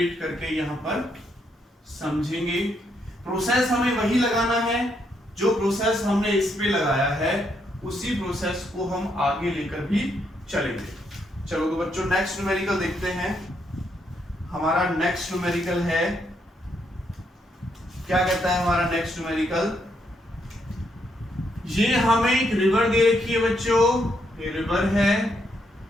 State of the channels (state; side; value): normal; both; correlation 0.76